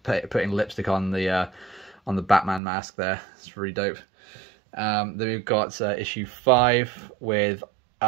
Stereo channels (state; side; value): drops out; left; at 2.6 s